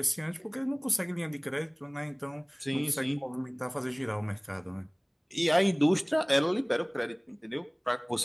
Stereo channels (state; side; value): identical; both; correlation 1.00